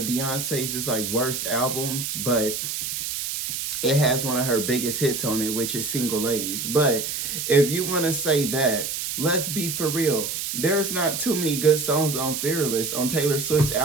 Beyonce's like worst albums, but it has one of her biggest hits on it, which is Single Ladies. But if you want to say that, let's be for real. There's not too many good songs on Fearless, on Taylor Swift's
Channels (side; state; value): right; noise; hiss, 3 dB below the sound